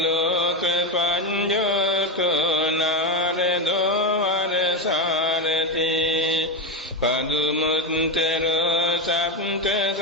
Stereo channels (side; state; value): both; normal; correlation 0.11